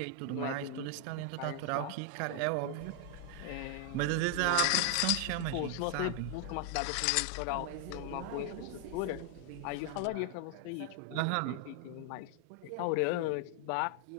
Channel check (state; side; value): different; both; correlation 0.00